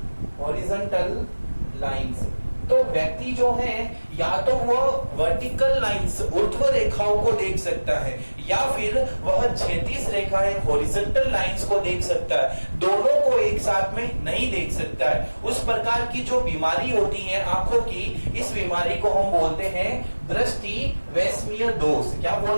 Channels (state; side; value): inverted; both; correlation -1.00